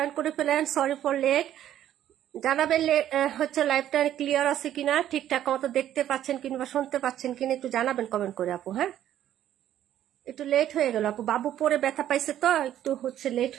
করে ফেলেন। Sorry for late. জানাবেন হচ্ছে লাইভটা ক্লিয়ার আছে কিনা, ঠিকঠাক মতো দেখতে পাচ্ছেন কিংবা শুনতে পাচ্ছেন কিনা একটু জানাবেন কমেন্ট করে আপু। হ্যাঁ, একটু লেট হয়ে গেল আপু, বাবু পরে ব্যথা পাইছে তো একটু হচ্ছে লেট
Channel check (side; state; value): left; quieter; 11.6 dB